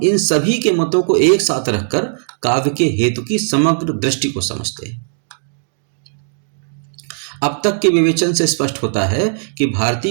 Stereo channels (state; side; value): silent; left; digital silence